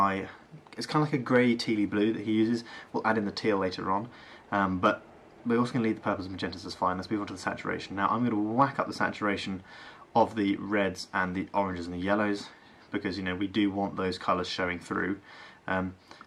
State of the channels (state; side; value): identical; both; correlation 1.00